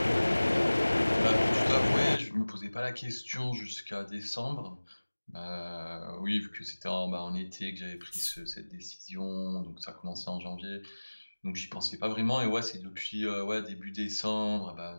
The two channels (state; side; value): inverted; both; correlation -1.00